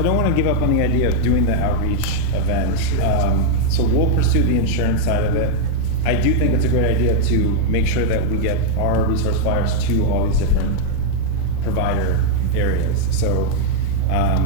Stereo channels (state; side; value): different; both; correlation 0.00